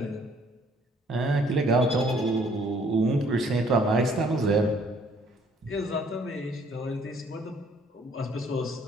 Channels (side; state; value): both; normal; correlation 0.62